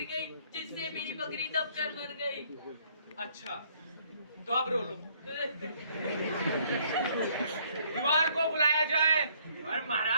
गई, जिससे मेरी बकरी दबकर मर गई। अच्छा तो अब रो लो। दीवार को बुलाया जाए। और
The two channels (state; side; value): inverted; both; correlation -0.64